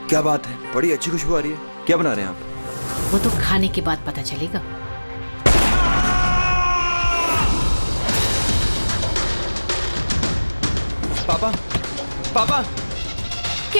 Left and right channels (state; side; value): inverted; both; correlation -1.00